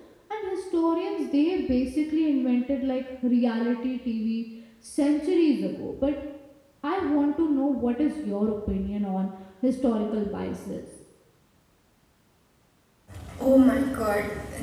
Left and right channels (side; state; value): both; identical; correlation 1.00